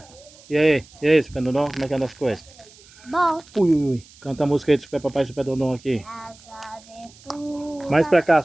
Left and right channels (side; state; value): right; noise; hiss, 24 dB below the sound